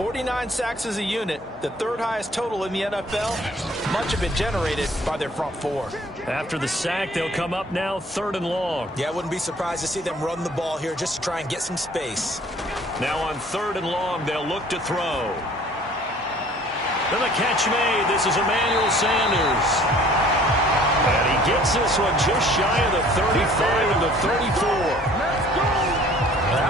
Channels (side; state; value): both; normal; correlation 0.53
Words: sacks as a unit, the 3rd highest total in the NFL, much of it generated by their front four. After the sack, they'll come up now 3rd and long. Yeah, I wouldn't be surprised to see them run the ball here just to try and get some space. Now on 3rd and long, they'll look to throw. Then the catch made. This is Emmanuel Sanders. And he gets this one just shy of the 35 and the 34. That